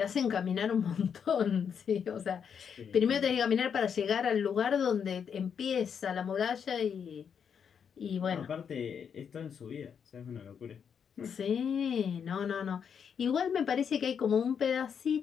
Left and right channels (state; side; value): quieter; right; 7.3 dB